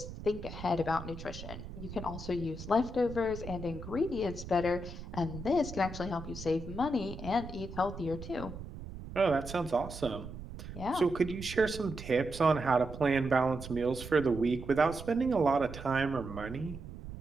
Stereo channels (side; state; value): right; noise; rumble, 11 dB below the sound